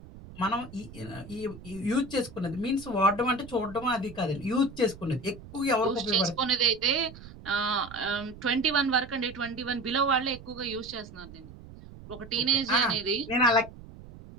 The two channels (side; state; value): right; noise; rumble, 17 dB below the sound